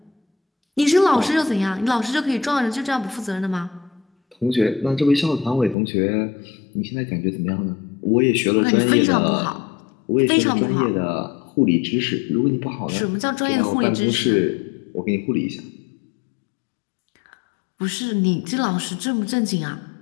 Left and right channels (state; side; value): drops out; right; at 5.8 s